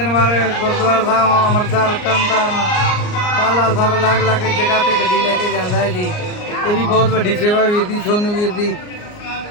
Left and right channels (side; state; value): right; late; 39 ms